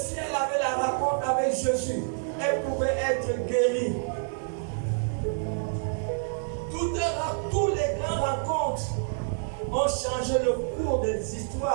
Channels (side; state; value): left; silent; 59 dB below the other